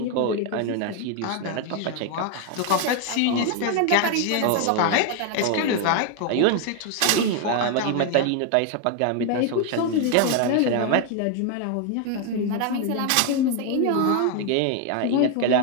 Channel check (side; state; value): both; different; correlation 0.01